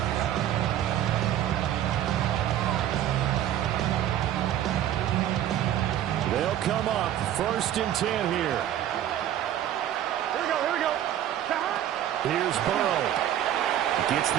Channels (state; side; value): quieter; left; 11.4 dB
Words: They'll come up 1st and 10 here. Here we go. Here's Burrow. Gets